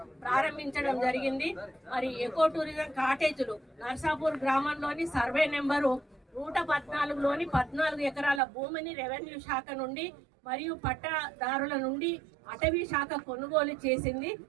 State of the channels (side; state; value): left; drops out; at 8.4 s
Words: ప్రారంభించడం జరిగింది. మరి ఎకో టూరిజం కాటేజీలు నర్సాపూర్ గ్రామంలోని సర్వే నెంబరు 114లోని 14 ఎకరాల భూమిని రెవెన్యూ శాఖ నుండి మరియు పట్టాదారుల నుండి అటవీ శాఖ కొనుగోలు చేసింది.